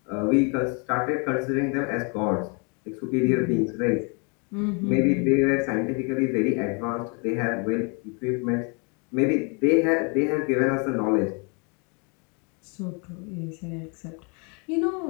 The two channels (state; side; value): quieter; right; 34.6 dB